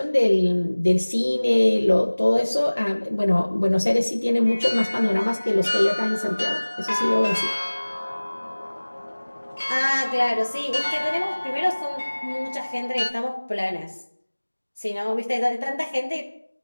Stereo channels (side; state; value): both; inverted; correlation -1.00